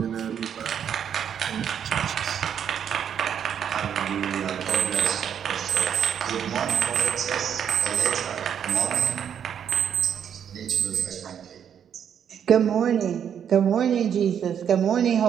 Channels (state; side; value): quieter; left; 8.5 dB